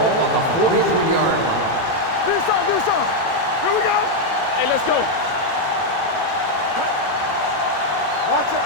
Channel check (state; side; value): late; right; 18 ms